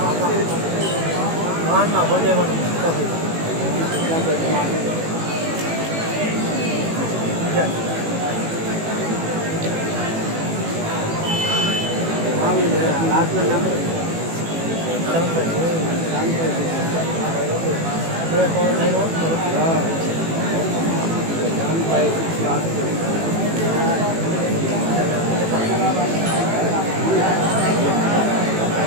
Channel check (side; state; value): left; late; 18 ms